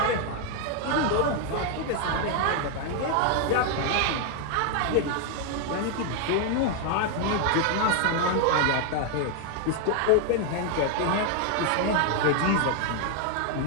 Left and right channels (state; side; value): different; both; correlation 0.00